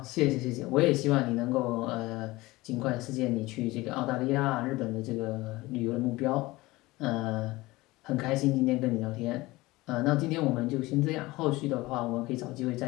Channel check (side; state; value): right; quieter; 20.2 dB